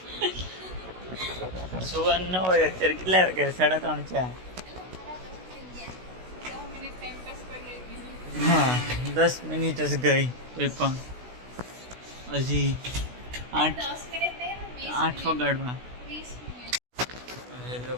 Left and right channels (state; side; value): late; left; 16 ms